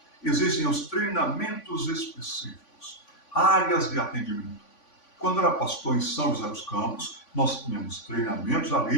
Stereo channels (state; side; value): late; right; 3.5 ms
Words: existem os treinamentos específicos, áreas de atendimento. Quando eu era pastor em São José dos Campos, nós tínhamos treinamentos